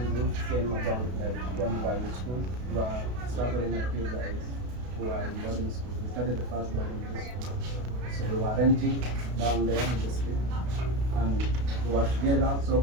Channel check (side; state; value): left; late; 32 ms